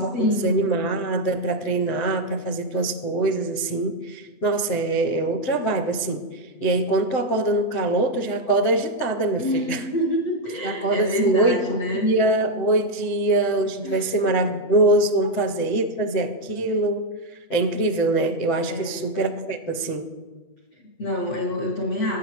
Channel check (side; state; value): right; late; 7.8 ms